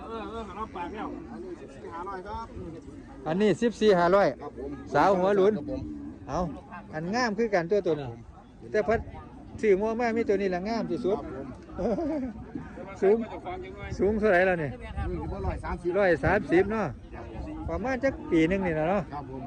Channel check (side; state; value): both; identical; correlation 1.00